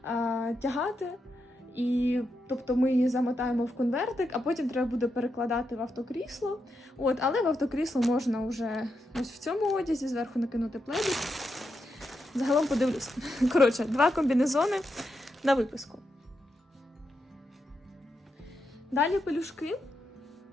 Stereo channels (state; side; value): normal; both; correlation 0.84